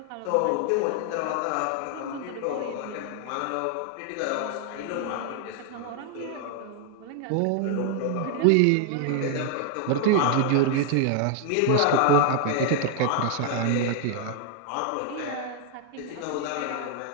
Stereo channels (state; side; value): different; both; correlation 0.00